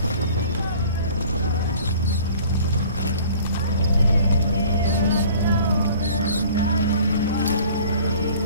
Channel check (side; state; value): both; inverted; correlation -0.49